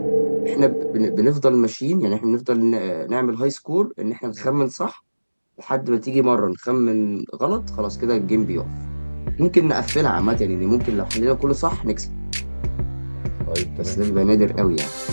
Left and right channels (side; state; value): both; inverted; correlation -1.00